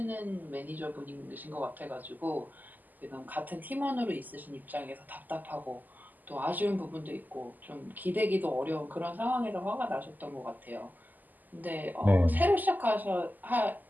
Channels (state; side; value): late; left; 0.084 ms